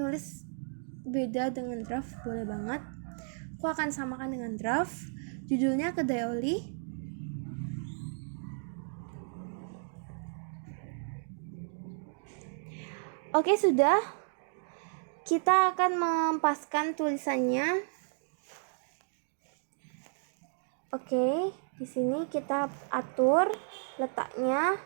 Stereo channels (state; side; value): silent; left; digital silence